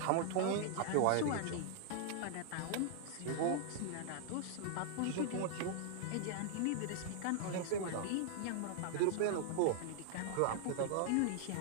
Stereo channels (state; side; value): different; both; correlation -0.01